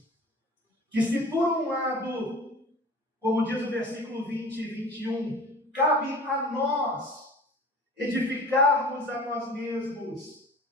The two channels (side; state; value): both; normal; correlation 0.40